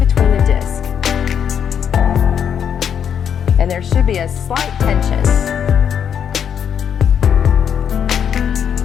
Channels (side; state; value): right; quieter; 8.2 dB